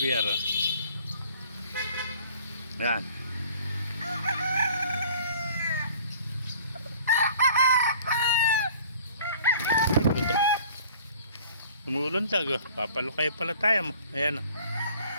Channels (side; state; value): both; inverted; correlation -0.51